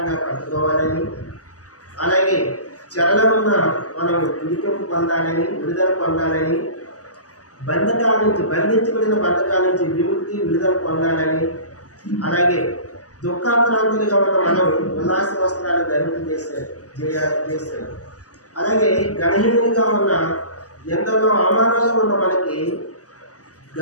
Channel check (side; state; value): right; late; 0.67 ms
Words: కట్టుకోవాలని, అలాగే చెరలో ఉన్న మనం విడిపింపు పొందాలని, విడుదల పొందాలని, బంధించబడిన బంధకాల నుంచి విముక్తి విడుదల పొందాలని, అలాగే దుఃఖాక్రాంతులుగా ఉన్న మనం ఉల్లాస వస్త్రాలు చేశారు. అలాగే గణహీనులుగా ఉన్న ఎంతలో అవమానంగా ఉన్న మనకి